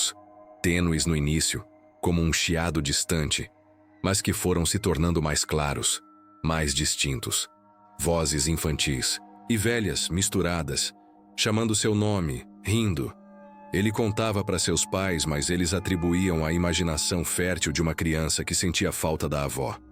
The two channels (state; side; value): identical; both; correlation 1.00